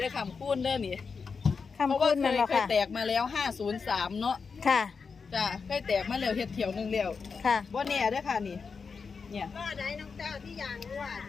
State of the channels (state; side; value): quieter; right; 5.3 dB